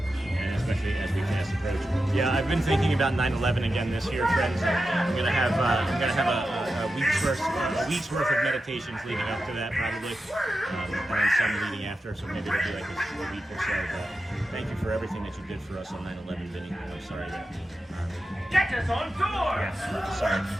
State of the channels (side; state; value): both; normal; correlation 0.90